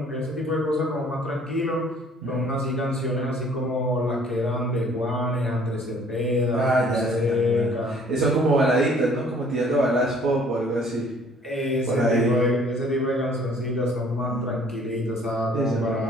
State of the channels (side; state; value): both; normal; correlation 0.57